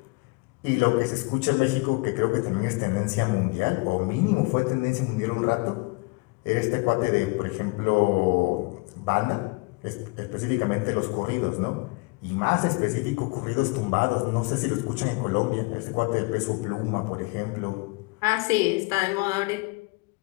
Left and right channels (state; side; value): quieter; right; 27.5 dB